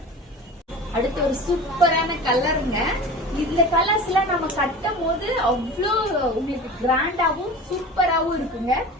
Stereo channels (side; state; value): both; normal; correlation 0.35